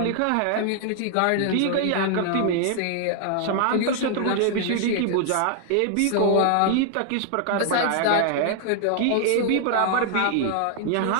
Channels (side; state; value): both; different; correlation 0.00